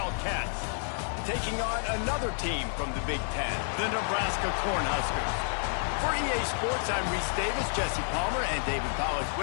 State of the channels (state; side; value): silent; right; 58 dB below the other